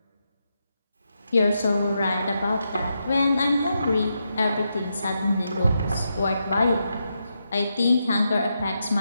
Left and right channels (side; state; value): both; inverted; correlation -0.84